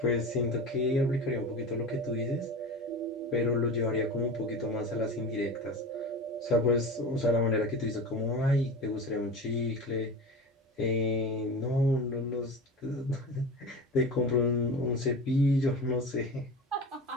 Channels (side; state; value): both; normal; correlation 0.30